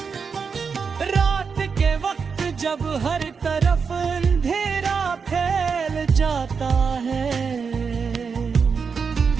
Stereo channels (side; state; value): left; quieter; 5.7 dB